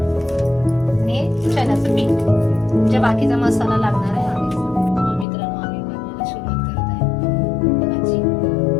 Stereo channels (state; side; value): drops out; right; at 5.2 s